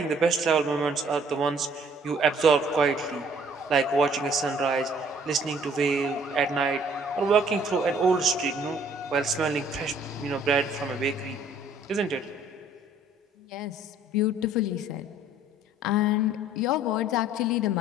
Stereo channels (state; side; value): normal; both; correlation 0.58